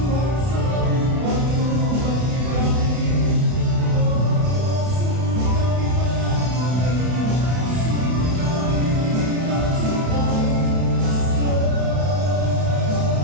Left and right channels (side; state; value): left; late; 32 ms